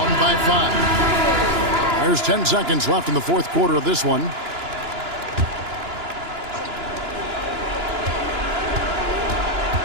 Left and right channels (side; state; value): left; late; 2.9 ms